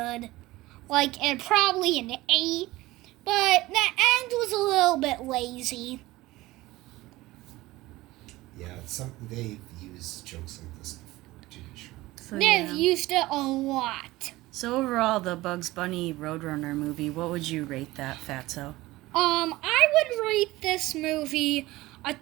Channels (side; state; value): left; quieter; 18.6 dB